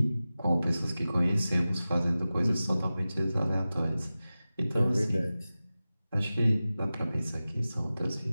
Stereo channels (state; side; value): inverted; both; correlation -0.96